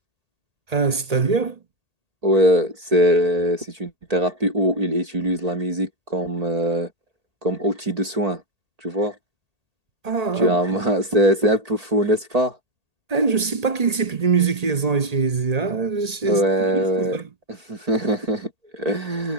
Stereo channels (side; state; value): left; late; 1.8 ms